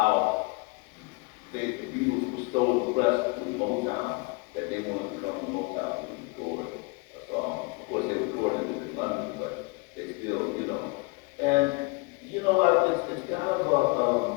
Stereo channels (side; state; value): right; quieter; 27.3 dB